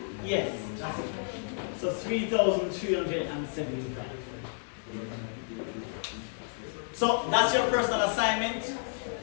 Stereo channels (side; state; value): right; silent; digital silence